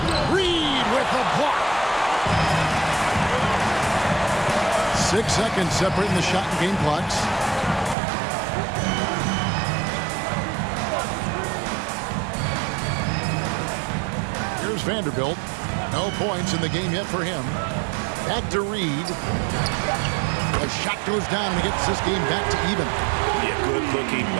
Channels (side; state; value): left; drops out; at 8.0 s